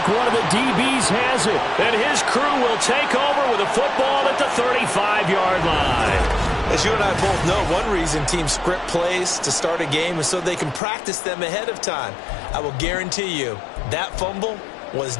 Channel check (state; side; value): drops out; right; at 10.8 s